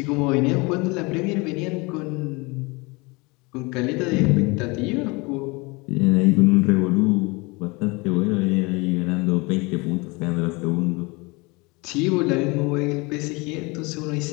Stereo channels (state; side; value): quieter; right; 26.3 dB